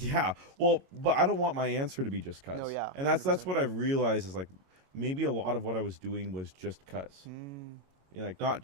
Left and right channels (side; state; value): left; late; 22 ms